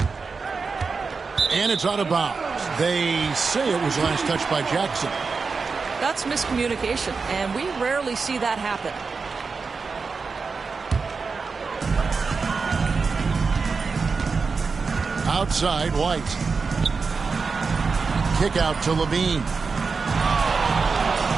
And it's out of bounds. They say it was last touched by Jackson. That's miscommunication, and we rarely see that happen. Outside, White. Kick out to Levine.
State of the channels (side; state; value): left; quieter; 4.7 dB